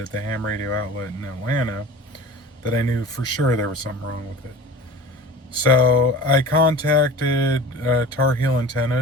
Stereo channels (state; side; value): normal; both; correlation 0.38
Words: at the ham radio outlet in Atlanta, that I knew for sure there was something wrong with it. So I contacted Tarheel